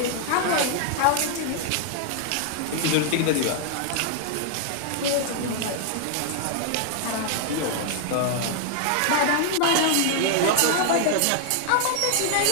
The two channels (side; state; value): both; different; correlation 0.00